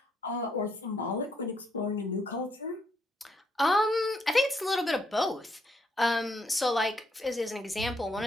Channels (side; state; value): both; normal; correlation 0.74